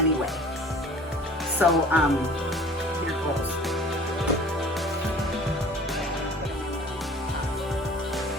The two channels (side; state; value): both; normal; correlation 0.47